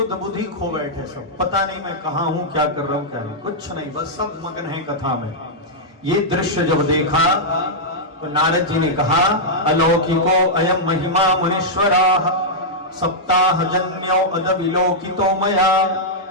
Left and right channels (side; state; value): both; normal; correlation -0.08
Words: बुद्धि खो बैठे। सब पता नहीं मैं कहां हूं, क्या कर रहा हूं, क्या नहीं, कुछ नहीं, बस सब मगन है कथा में। ये दृश्य जब देखा तो नारद जी ने कहा, अलौकिको अयम महिमा मुनीश्वराः सप्ताह जन्यो अदविलोकितो मया